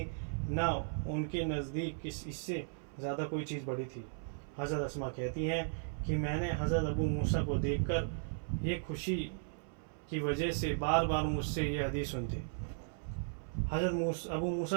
نہ ان کے نزدیک اس سے زیادہ کوئی چیز بڑی تھی۔ حضرت اسماء کہتی ہیں کہ میں نے حضرت ابو موسیٰ کو دیکھ کر یہ خوشی کی وجہ سے بار بار مجھ سے یہ حدیث سنتے۔ حضرت ابو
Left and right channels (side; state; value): left; silent; 54 dB below the other